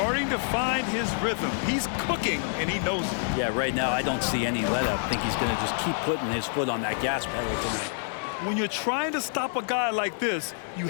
to find his rhythm. He's cooking, and he knows it. Yeah, right now I don't see any let-up. I think he's going to just keep putting his foot on that gas pedal tonight. When you're trying to stop a guy like this, you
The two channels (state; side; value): silent; right; digital silence